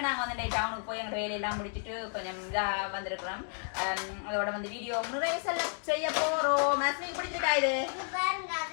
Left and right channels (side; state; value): right; silent; 56 dB below the other